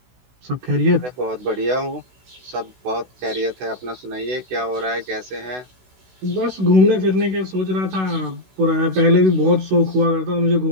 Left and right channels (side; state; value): left; late; 16 ms